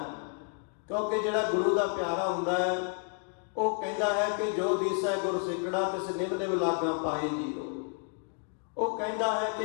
ਕਿਉਂਕਿ ਜਿਹੜਾ ਗੁਰੂ ਦਾ ਪਿਆਰਾ ਹੁੰਦਾ ਹੈ ਉਹ ਕਹਿੰਦਾ ਹੈ ਕਿ ਜੋ ਦੀਸੈ ਗੁਰਸਿੱਖੜਾ ਤਿਸ ਨਿਮ ਨਿਮ ਲਾਗਾਂ ਪਾਏ ਜੀਓ। ਉਹ ਕਹਿੰਦਾ ਹੈ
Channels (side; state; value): right; quieter; 37.5 dB